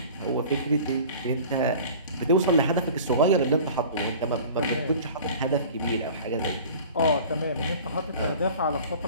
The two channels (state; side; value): inverted; both; correlation -0.42